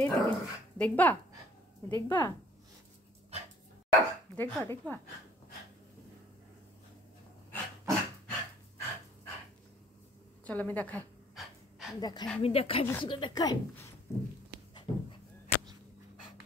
এইদিকে। দেখবা দেখবা দেখবা দেখবা, চলো আমি দেখাই। দেখাই, আমি দেখাই, বিশুকে দেখাই।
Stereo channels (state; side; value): normal; both; correlation 0.57